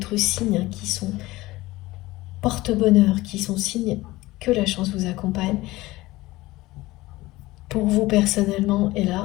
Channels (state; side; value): quieter; right; 19.0 dB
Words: signes qui sont porte-bonheur, qui sont signes que la chance vous accompagne. Pour vous personnellement, et